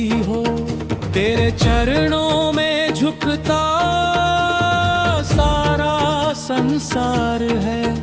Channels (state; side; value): identical; both; correlation 1.00